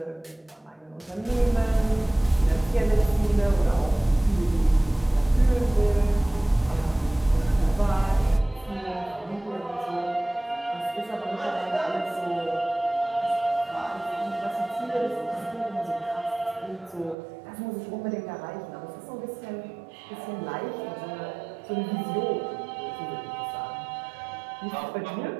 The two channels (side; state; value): left; drops out; at 17.2 s